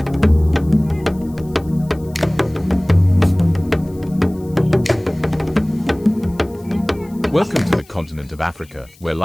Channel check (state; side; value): noise; left; hiss, 27 dB below the sound